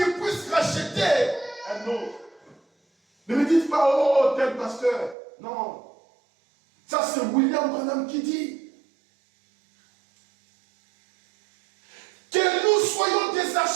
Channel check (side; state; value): left; drops out; at 5.2 s